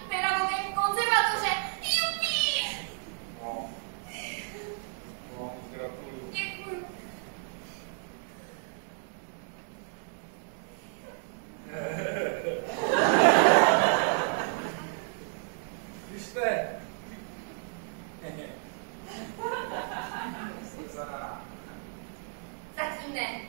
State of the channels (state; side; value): silent; left; digital silence